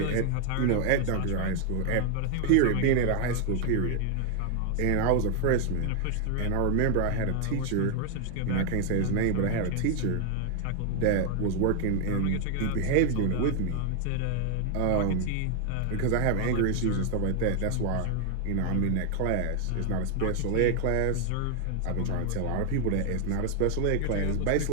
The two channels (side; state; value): both; different; correlation 0.00